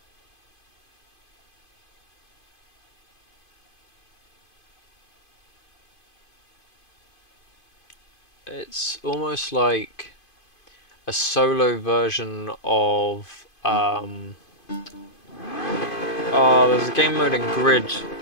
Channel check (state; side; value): late; right; 2.5 ms